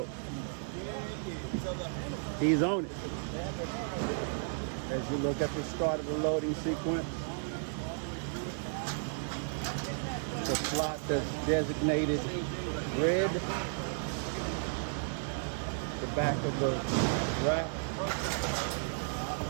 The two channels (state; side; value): silent; left; digital silence